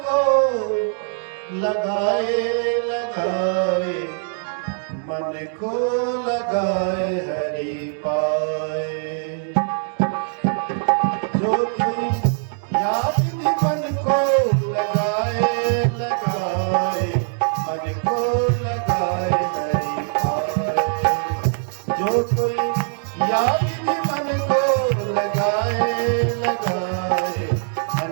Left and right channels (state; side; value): silent; left; digital silence